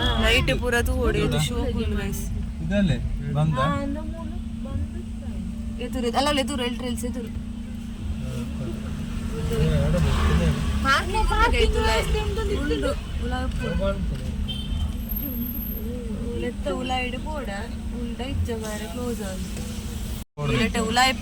ನೈಟ್ ಪೂರ ತೂಡಿದ್ದು ಶೋಕುಲ್ ಗೈಸ್ ಇದಲ್ಲೇ ಬಂದ ಎದುರು ಅಲ್ಲ ಎದುರು ಎಲ್ಟ್ರಲ್ಸ್ ಎದುರು ಉಲಾಯಿಡು ಪೋಡ ಉಂಡ ಇಜ್ಜ ಮಾರೆ ಕ್ಲೋಸ್ ಆಗಿ ಉಲಾಯಿ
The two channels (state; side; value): identical; both; correlation 1.00